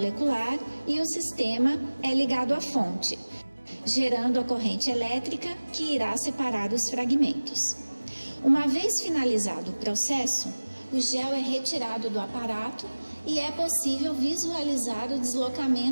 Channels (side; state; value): both; inverted; correlation -1.00